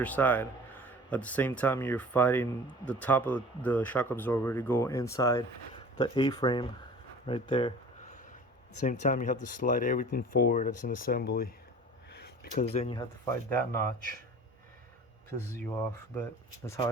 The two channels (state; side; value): normal; both; correlation 0.42